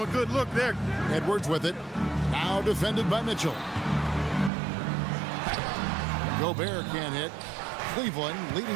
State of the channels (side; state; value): left; drops out; at 4.5 s